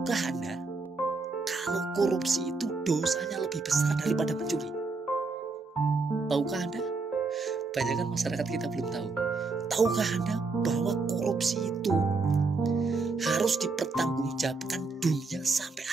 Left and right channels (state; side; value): quieter; left; 4.0 dB